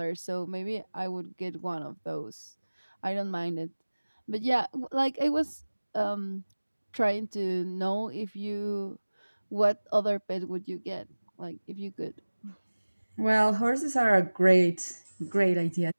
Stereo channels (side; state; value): both; inverted; correlation -1.00